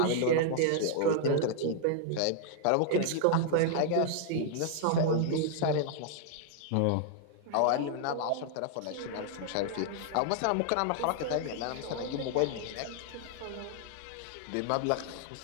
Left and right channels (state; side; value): different; both; correlation 0.00